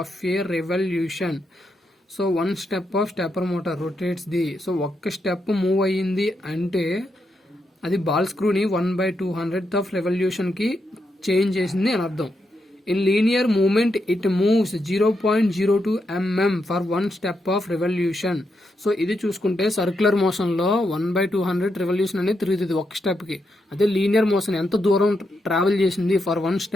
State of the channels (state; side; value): normal; both; correlation 0.83